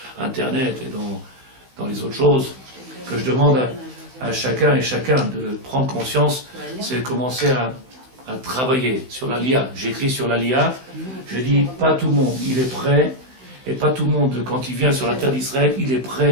Internet et dans les autres choses, que je demande à chacun et chacun de prendre conscience, c'est de commencer à travailler sur la LIA. J'écris sur la LIA, je dis pas tout le monde, il est prêt, et pas tout le monde, quand il vient sur la terre d'Israël, il est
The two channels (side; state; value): left; late; 16 ms